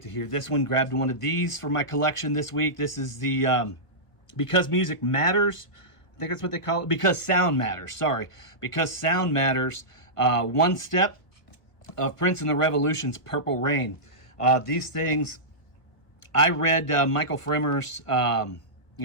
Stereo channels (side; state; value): right; late; 1.4 ms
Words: to hear this one. Grabbed one of these for my collection this week. This is the Because Music Matters. I think that's what they call it. Because Sound Matters. Sorry. Because Sound Matters. One Step of Prince and the Revolution's Purple Rain. These things, I read Michael Fremer's